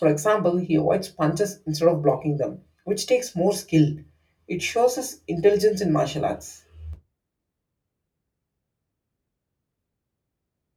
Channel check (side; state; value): both; identical; correlation 1.00